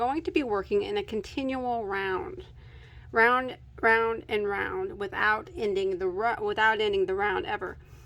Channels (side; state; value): both; identical; correlation 1.00